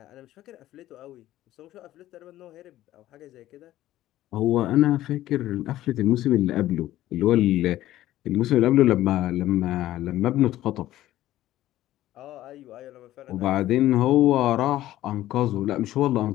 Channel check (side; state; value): right; quieter; 14.5 dB